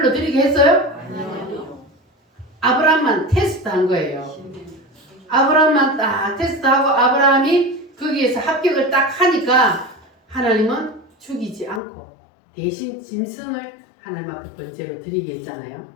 드리게 했어요? 아브라함만 테스트한 거예요. 아브라함만 딱 테스트하고 아브라함이 거기에서 합격을 딱 하니까 하나님은 죽이지 않고 대신 짐승을 하나님 앞에 번제로 드리게 했잖아요.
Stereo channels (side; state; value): right; drops out; at 11.8 s